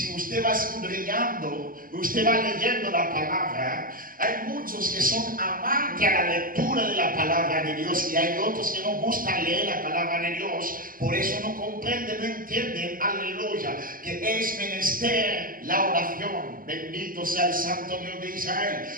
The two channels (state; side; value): late; left; 0.41 ms